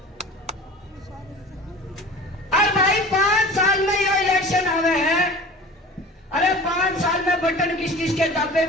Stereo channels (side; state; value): both; normal; correlation 0.39